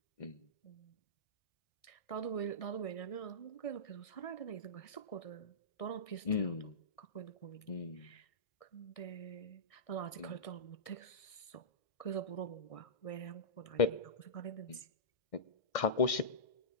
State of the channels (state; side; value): late; right; 1.6 ms